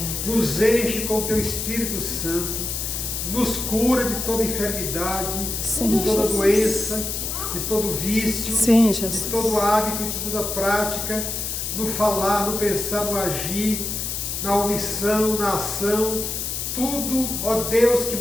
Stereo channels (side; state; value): left; noise; hiss, 3 dB below the sound